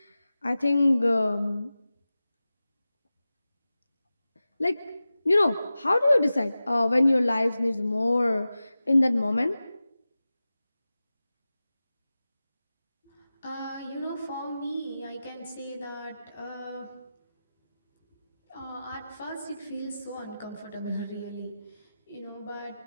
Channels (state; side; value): inverted; both; correlation -0.95